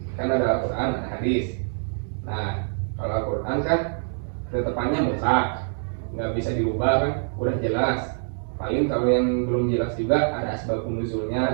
kan ada Al-Quran, ada hadis. Nah, kalau Al-Quran kan ketetapannya mutlak, nggak bisa dirubah kan, udah jelas. Paling kalau yang belum jelas juga ada asbabun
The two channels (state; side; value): silent; left; 61 dB below the other